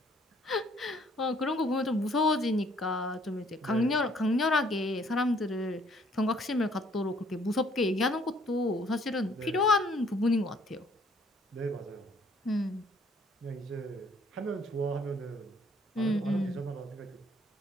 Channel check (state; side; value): normal; both; correlation 0.62